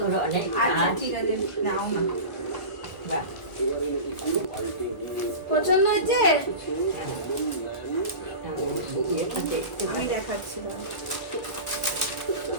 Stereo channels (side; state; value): right; late; 1.4 ms